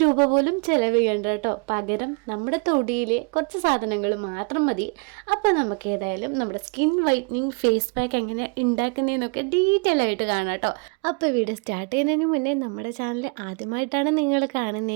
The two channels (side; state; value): left; quieter; 33.3 dB